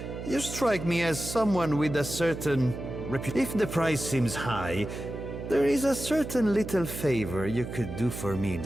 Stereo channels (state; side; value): noise; right; hum, 8 dB below the sound